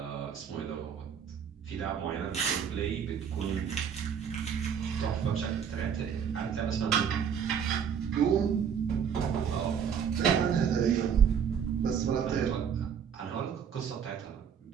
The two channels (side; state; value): left; quieter; 7.6 dB